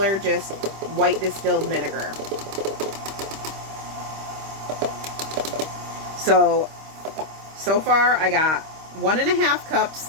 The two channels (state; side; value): late; left; 26 ms